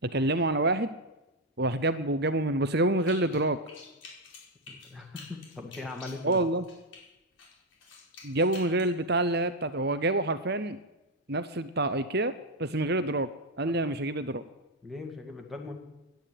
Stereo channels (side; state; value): both; normal; correlation 0.02